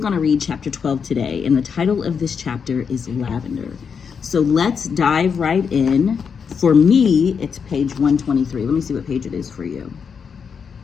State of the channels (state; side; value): quieter; right; 6.4 dB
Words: to read chapter 12 today, and the title of this chapter is Lavender. So let's dive right in. For me, it's page 123. Let me see what page it is for you.